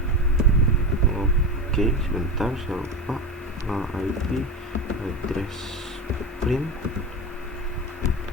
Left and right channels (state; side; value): normal; both; correlation 0.22